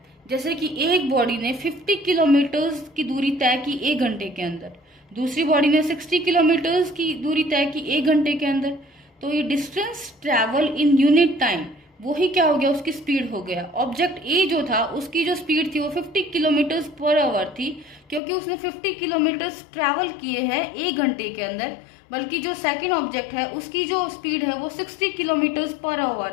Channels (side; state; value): right; drops out; at 18.2 s